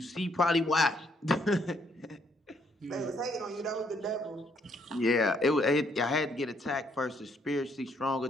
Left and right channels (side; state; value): both; normal; correlation 0.70